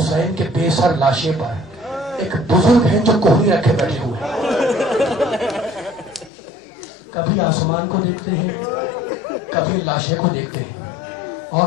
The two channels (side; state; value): right; drops out; at 6.3 s